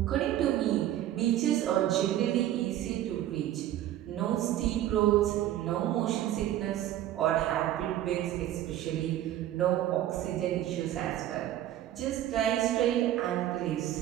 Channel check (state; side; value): quieter; left; 12.8 dB